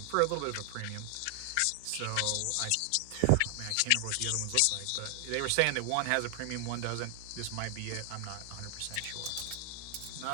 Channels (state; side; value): different; both; correlation 0.00